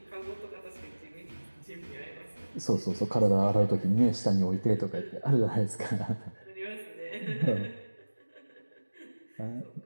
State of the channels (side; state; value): both; inverted; correlation -1.00